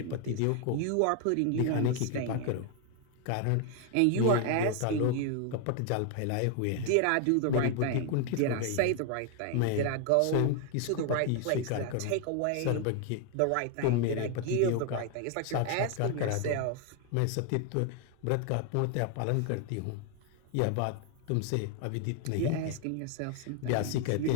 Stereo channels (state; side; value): different; both; correlation 0.00